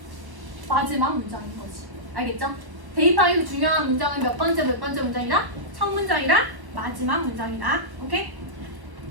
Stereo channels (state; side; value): late; left; 1.1 ms